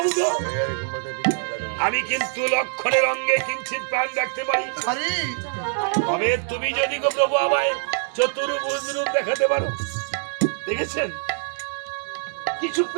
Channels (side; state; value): left; silent; digital silence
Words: আমি কিন্তু লক্ষণের অঙ্গে কিঞ্চিত প্রাণ রাখতে পারি তবে তুমি যদি গো প্রভু আমায় চতুর্ভুজ রূপ দেখাতে পারো দেখেছেন কিছু